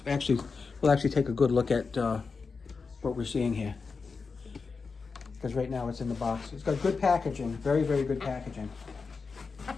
actually take a good look at what we're seeing here. Because right now it's in the box. It's got good packaging, very, very good packaging.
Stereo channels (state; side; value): quieter; right; 4.8 dB